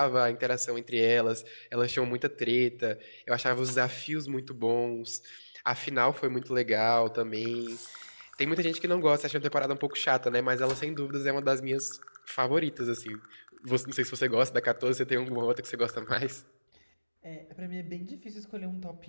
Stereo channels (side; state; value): both; inverted; correlation -1.00